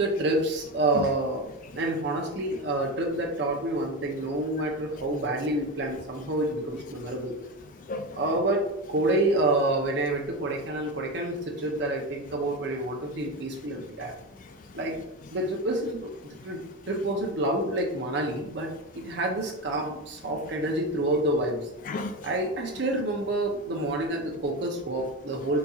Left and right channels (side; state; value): both; normal; correlation 0.19